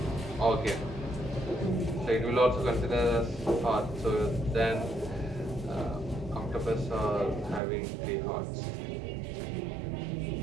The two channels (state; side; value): drops out; left; at 7.6 s